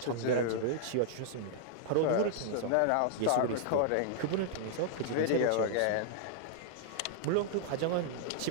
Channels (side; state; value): both; different; correlation -0.01